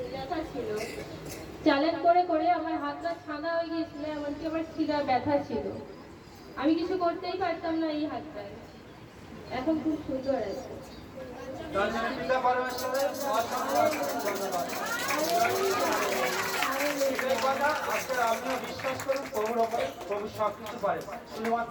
ব্যথা ছিল, চ্যালেঞ্জ করে করে আমার হাতটা ছাদা হয়ে গিয়েছিল, এমনকি আমার শিরা ব্যথা ছিল, আমি কিছু করতেই পারতাম না এই হাতটায়। এখন খুব সুন্দর আছে। পিতা পরমেশ্বরের ধন্যবাদ। আজকে আপনিও বিশ্বাস করুন প্রভুর ওপরে, প্রভু সবকিছু পারে,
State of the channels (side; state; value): both; identical; correlation 1.00